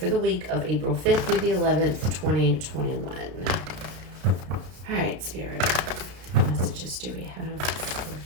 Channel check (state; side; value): late; left; 33 ms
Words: the week of April 5th through the 11th, 2021. All right, Spirit, what messages do we have